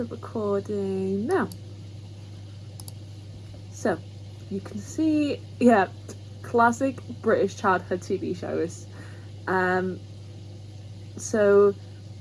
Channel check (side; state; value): both; identical; correlation 1.00